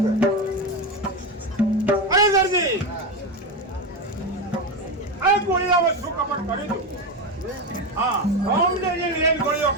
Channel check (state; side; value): normal; both; correlation 0.15